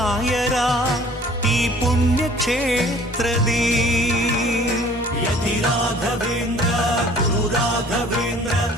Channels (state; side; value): normal; both; correlation 0.52